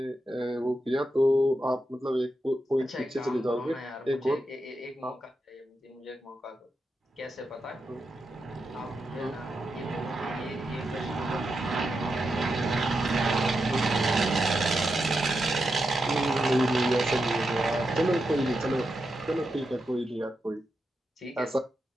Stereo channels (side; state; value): both; normal; correlation 0.86